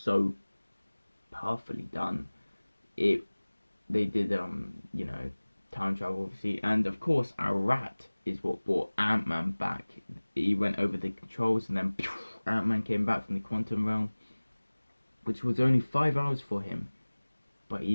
perfectly done. They did time travel, obviously, and of course our rat is what brought Ant-Man back. He went over the controls and then Ant-Man came back from the quantum realm, which was only 5 hours for him, but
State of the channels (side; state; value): both; inverted; correlation -1.00